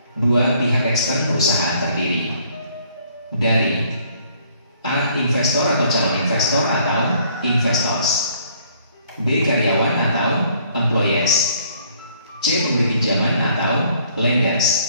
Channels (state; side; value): inverted; both; correlation -0.62